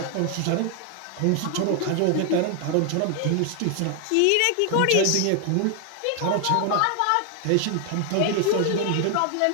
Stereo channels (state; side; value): different; both; correlation 0.00